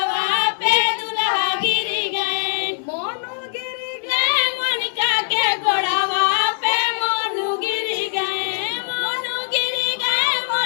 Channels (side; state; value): right; silent; 65 dB below the other